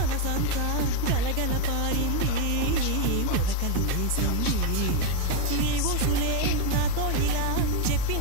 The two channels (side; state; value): both; different; correlation 0.01